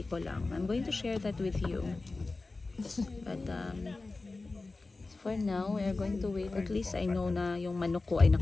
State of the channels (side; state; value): right; quieter; 3.5 dB